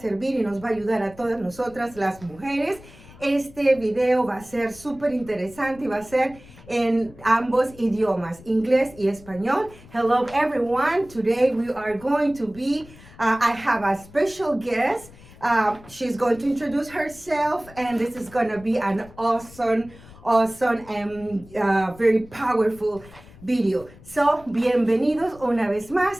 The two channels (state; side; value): noise; left; rumble, 21 dB below the sound